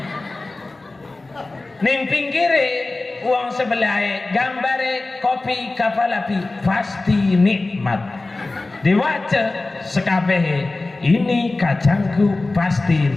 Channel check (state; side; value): quieter; right; 3.2 dB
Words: Ning pinggire uang sebelah gambare kopi kapal api, pasti nikmat. Diwaca sekabehe, ini kacangku pasti